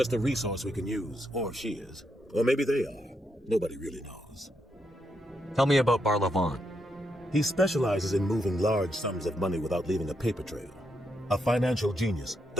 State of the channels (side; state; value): both; normal; correlation 0.80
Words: a resource we can use, or she is. Or maybe they are. Nobody really knows. Tell me about Barla Vaughn. He specializes in moving large sums of money without leaving a paper trail. A financial genius.